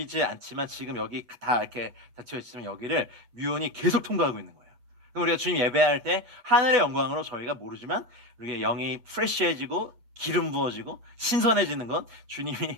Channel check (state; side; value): late; left; 8.3 ms